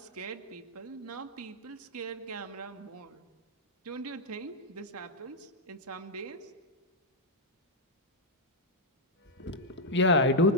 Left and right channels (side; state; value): both; normal; correlation -0.04